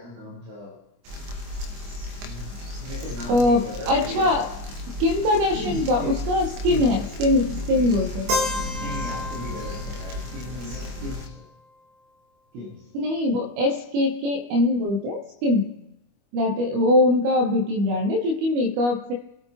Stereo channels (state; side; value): late; left; 25 ms